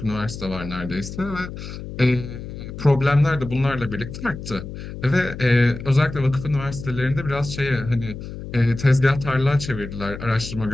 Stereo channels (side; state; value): left; noise; hum, 10 dB below the sound